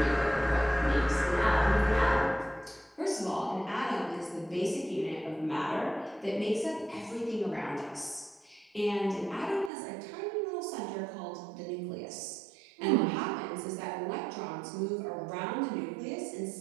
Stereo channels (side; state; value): left; drops out; at 9.7 s